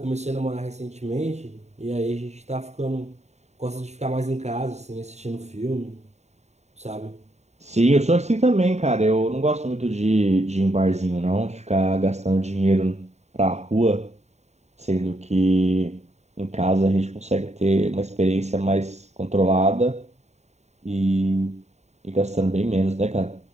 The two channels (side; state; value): left; late; 0.32 ms